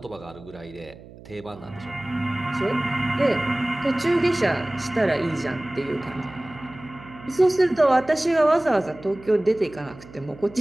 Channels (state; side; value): noise; right; hum, 19 dB below the sound